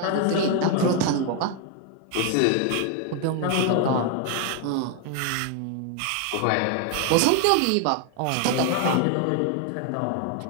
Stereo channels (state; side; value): different; both; correlation 0.01